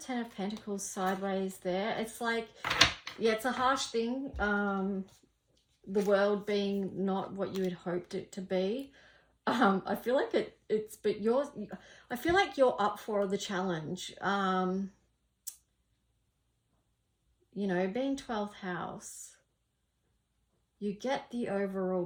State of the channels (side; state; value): both; identical; correlation 1.00